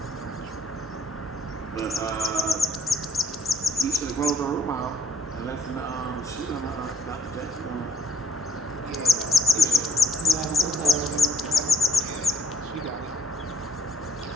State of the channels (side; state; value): both; normal; correlation 0.60